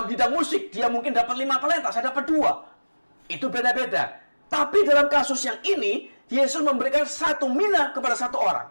bidang musik, dia mungkin dapat 5 talenta, saya dapat 2. Itu beda-beda. Tapi dalam kasus yang ini, Yesus memberikan 1 mina kepada 1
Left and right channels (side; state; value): both; inverted; correlation -1.00